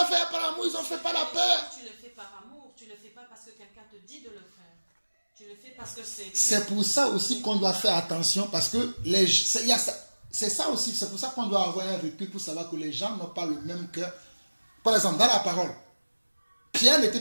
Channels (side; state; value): both; inverted; correlation -1.00